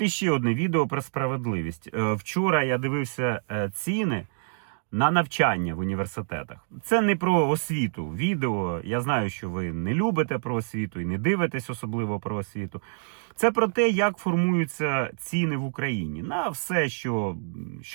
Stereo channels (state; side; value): silent; left; digital silence